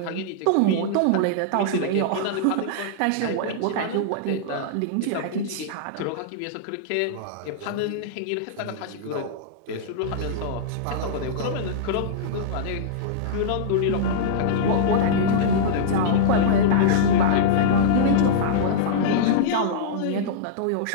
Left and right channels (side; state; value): both; different; correlation -0.03